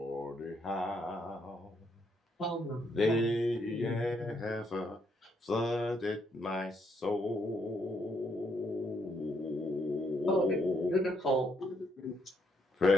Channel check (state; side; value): normal; both; correlation 0.74